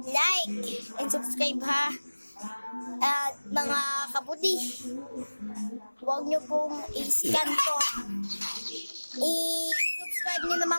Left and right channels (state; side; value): inverted; both; correlation -1.00